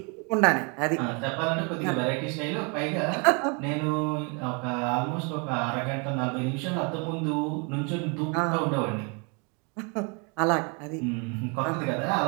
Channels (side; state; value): left; quieter; 33.6 dB